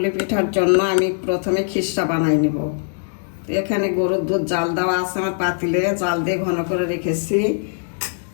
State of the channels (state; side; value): silent; right; digital silence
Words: পিঠার জন্য আমি প্রথমে খিসা বানাই নিব। তো এখানে গরুর দুধ জাল দেওয়া আছে আমার পাতিলে, জাল দিয়ে ঘন করে রেখেছি।